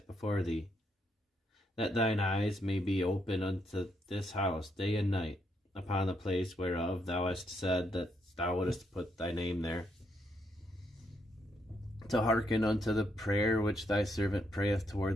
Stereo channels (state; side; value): normal; both; correlation 0.77